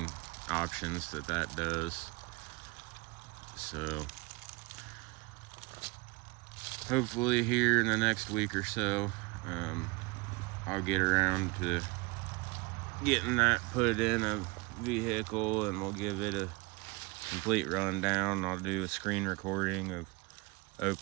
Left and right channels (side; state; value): left; quieter; 25.5 dB